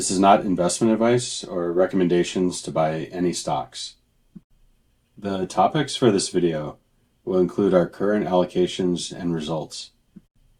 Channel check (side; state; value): both; identical; correlation 1.00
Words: is not investment advice or recommendations to buy any stocks. The topics for this video will include our current allocations and results.